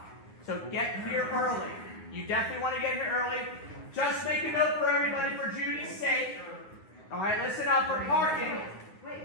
So get here early. You definitely want to get here early. Just make a note for everybody for Judy's sake. All right, listen up for parking.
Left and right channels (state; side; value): late; right; 9.7 ms